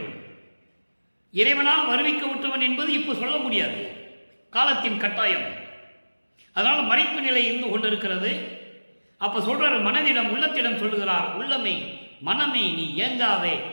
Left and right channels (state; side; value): inverted; both; correlation -1.00